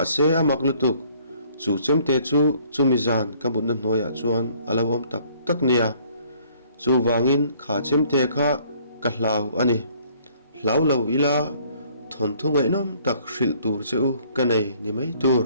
se amak lutuk chu chemte chu chumizan ka bun na noya chuan alawom tak nia chu wangin kha chemte kha ka hlau ani hlau lo ila thon thungai nom tak hril tur cheu kanei ni mai tur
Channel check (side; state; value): both; inverted; correlation -0.60